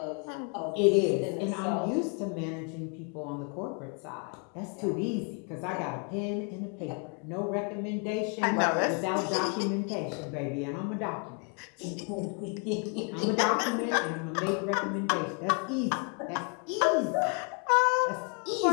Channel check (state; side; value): quieter; right; 37.2 dB